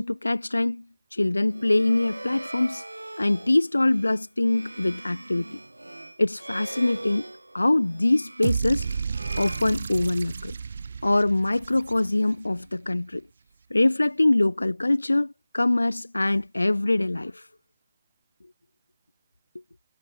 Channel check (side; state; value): both; inverted; correlation -0.99